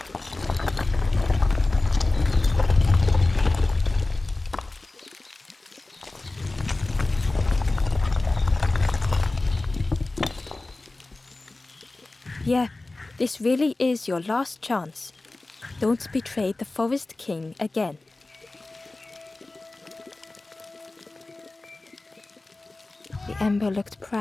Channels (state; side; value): quieter; right; 3.1 dB